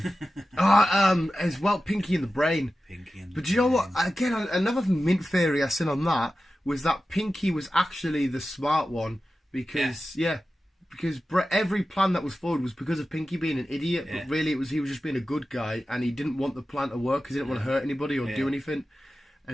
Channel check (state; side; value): normal; both; correlation 0.94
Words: As well, Pinky and the Brain. But you know what? Again, another mint theory I seen on that was that Pinky was actually the smart one because every plan that was forward was because of Pinky being an idiot. But really, he was just being a good guy, and he didn't want the plan to work because he didn't want to hurt anybody or do anything.